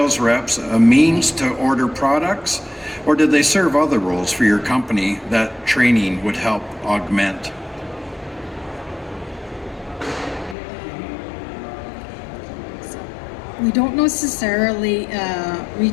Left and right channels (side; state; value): right; drops out; at 10.6 s